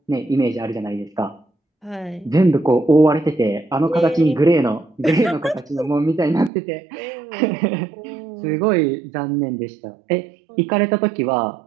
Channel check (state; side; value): drops out; left; at 6.5 s